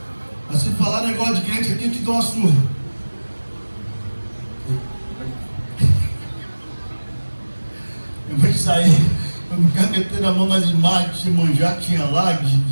Mas se falar negócio de crente aqui, eu te dou uma surra. Eu vou sair, eu me meter a mão nas imagens de manjar, tinha lá,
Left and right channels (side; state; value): both; inverted; correlation -1.00